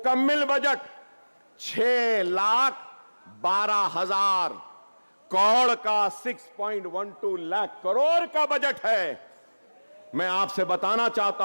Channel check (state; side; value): inverted; both; correlation -1.00